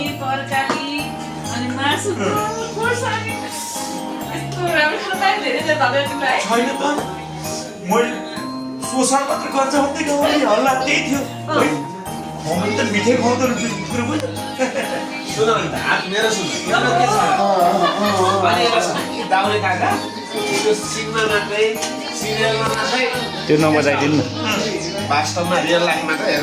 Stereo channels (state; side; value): identical; both; correlation 1.00